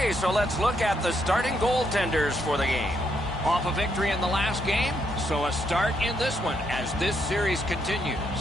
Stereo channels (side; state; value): both; normal; correlation 0.76